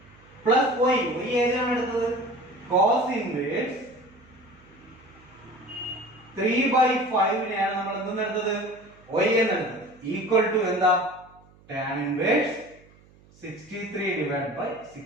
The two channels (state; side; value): noise; right; hum, 27 dB below the sound